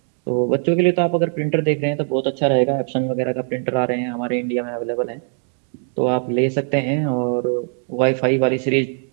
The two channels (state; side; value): silent; left; 57 dB below the other